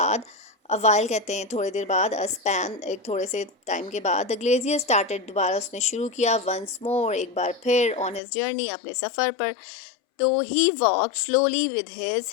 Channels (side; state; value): right; drops out; at 8.2 s